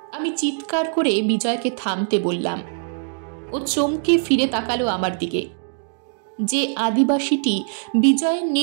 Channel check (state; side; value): silent; left; digital silence